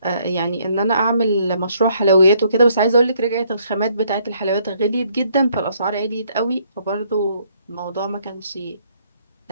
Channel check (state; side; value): inverted; both; correlation -0.67